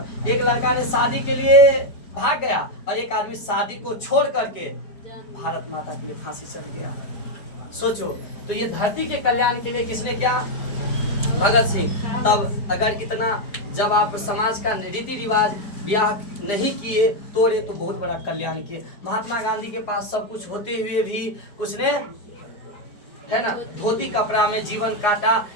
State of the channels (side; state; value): right; late; 4.9 ms